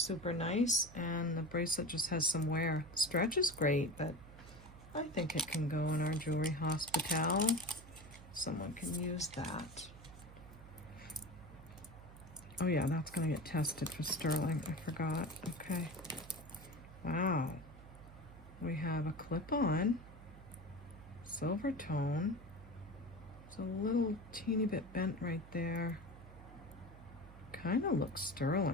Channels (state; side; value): noise; right; hum, 17 dB below the sound